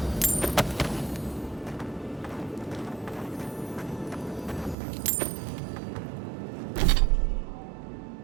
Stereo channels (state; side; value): drops out; left; at 4.8 s